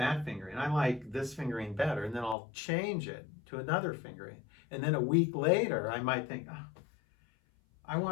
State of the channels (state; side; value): drops out; right; at 2.4 s